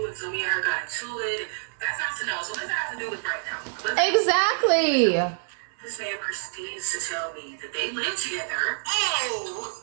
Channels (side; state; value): left; silent; 60 dB below the other